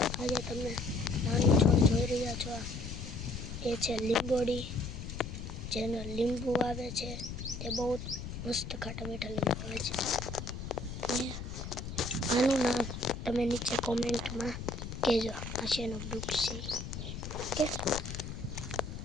આજે તમે નાનું છોડ જોઈ રહ્યા છો, એ છે લીંબોડી, જેનો લીંબુ આવે છે તે બહુ મસ્ત ખાટા મીઠા લીંબુ આવે છે. અને આનું નામ તમે નીચે કોમેન્ટમાં કહેજો, આ શેનો વૃક્ષ છે. ઓકે,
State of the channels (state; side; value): noise; left; rumble, 7 dB below the sound